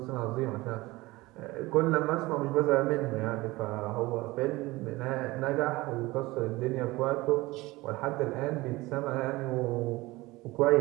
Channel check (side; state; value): left; quieter; 20.6 dB